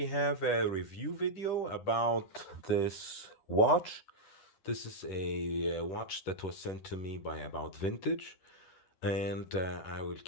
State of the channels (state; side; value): late; right; 11 ms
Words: have a review video about this watch. This is a watch that was sent to me by About Vintage, and I will